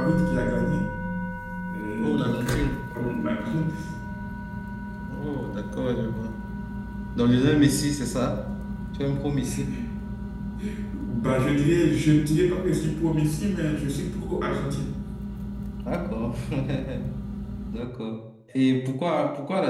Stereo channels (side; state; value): both; identical; correlation 1.00